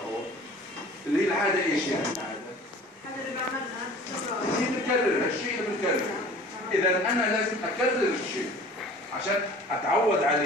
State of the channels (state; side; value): normal; both; correlation 0.45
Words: اللي هي العادة إيش يعني العادة؟ هذا اللي بعملها هي بنكرر الشيء اللي بنكرره. إذا أنا لازم أكرر الشيء عشان أتعود